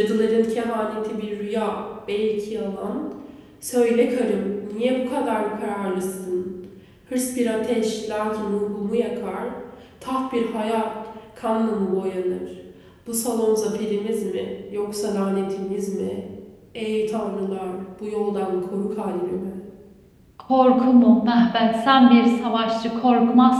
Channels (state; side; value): identical; both; correlation 1.00